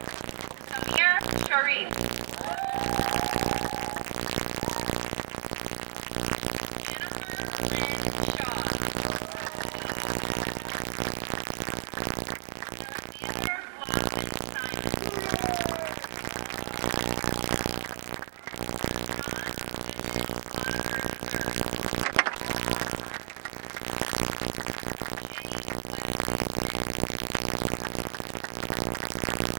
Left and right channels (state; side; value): silent; left; 56 dB below the other